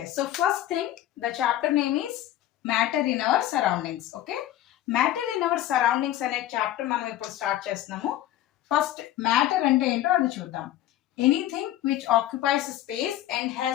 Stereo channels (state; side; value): quieter; right; 13.4 dB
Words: so first thing, the chapter name is matter in our surroundings. Okay, matter in our surroundings అనే chapter మనం ఇప్పుడు start చేస్తున్నాము. First matter అంటే ఏంటో అది చూద్దాం. Anything which occupies space and